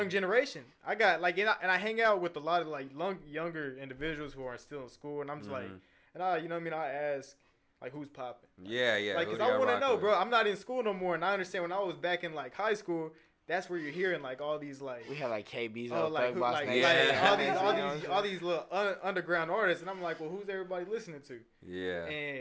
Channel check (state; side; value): identical; both; correlation 1.00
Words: generation. I got like and I hang out with a lot of like younger individuals who are still in school, and I'm just like, and you know what I mean? I ask like who's popping. Like, yeah. Like, cause I want to know, bro. I'm not in school no more, and I understand when I was back in like high school. That's where you're hearing like all these like we had like KB's. Like who like all these little underground artists, and I'm like, well, who's everybody listening to? Yeah.